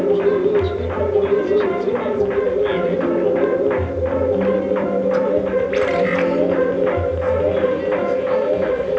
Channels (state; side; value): identical; both; correlation 1.00